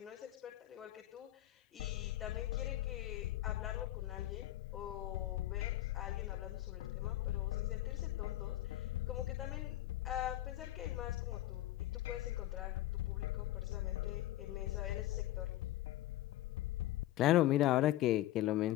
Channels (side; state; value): right; quieter; 14.7 dB